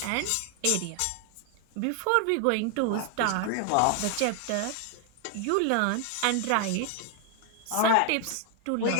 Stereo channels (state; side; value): different; both; correlation 0.00